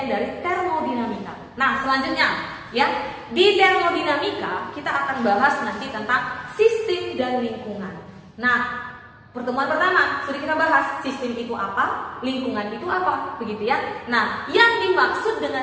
dari termodinamika. Nah, selanjutnya ya, di termodinamika kita akan bahas nanti tentang sistem dan lingkungan. Nah, pertemuan pertama sudah kita bahas sistem itu apa, lingkungan itu apa, begitu ya. Nah, yang dimaksud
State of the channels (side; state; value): both; identical; correlation 1.00